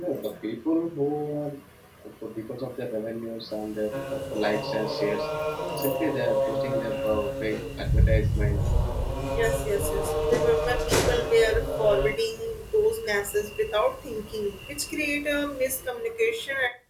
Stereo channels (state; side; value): identical; both; correlation 1.00